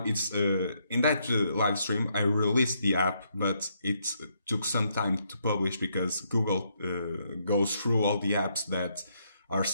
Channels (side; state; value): both; inverted; correlation -0.75